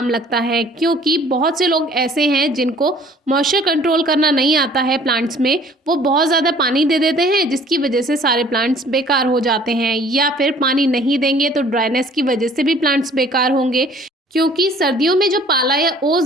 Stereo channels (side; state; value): both; normal; correlation 0.54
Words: लगता है, क्योंकि बहुत से लोग ऐसे हैं जिनको मॉइस्चर कंट्रोल करना नहीं आता है प्लांट्स में। वो बहुत ज़्यादा पानी दे देते हैं, जिसकी वजह से सारे प्लांट्स बेकार हो जाते हैं, या फिर पानी नहीं देंगे तो ड्राइनेस की वजह से भी प्लांट्स बेकार होंगे। क्योंकि सर्दियों में जो पाला या